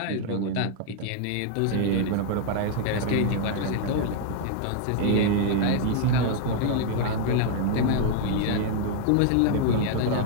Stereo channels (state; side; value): different; both; correlation 0.00